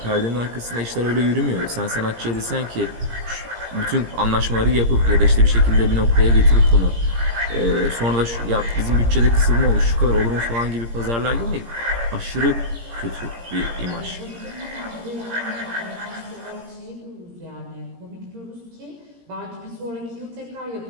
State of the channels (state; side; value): late; left; 17 ms